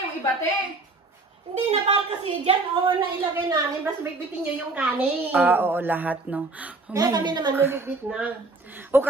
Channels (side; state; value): left; quieter; 3.4 dB